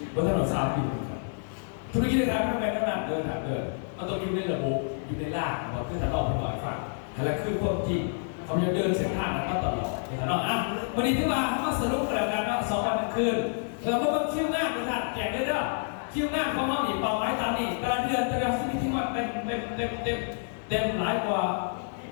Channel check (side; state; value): right; silent; digital silence